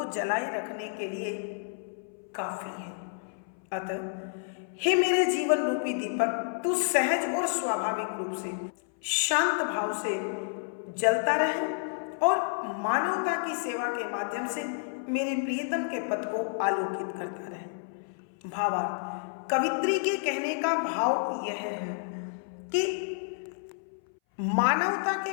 जलाए रखने के लिए काफी है। अतः हे मेरे जीवन रूपी दीपक, तू सहज और स्वाभाविक रूप से, शांत भाव से जलता रहे और मानवता की सेवा के माध्यम से मेरे प्रियतम के पद को आलोकित करता रहे। भावार्थ, कवित्री के कहने का भाव यह है कि मानवता के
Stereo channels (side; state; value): right; silent; 58 dB below the other